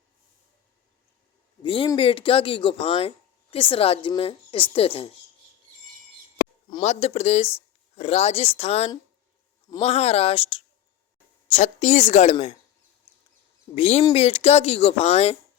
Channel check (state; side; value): quieter; right; 11.2 dB